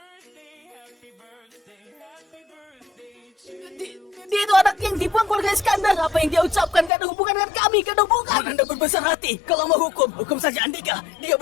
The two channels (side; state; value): right; drops out; at 6.9 s